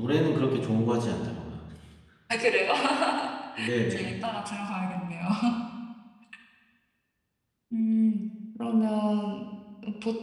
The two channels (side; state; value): both; identical; correlation 1.00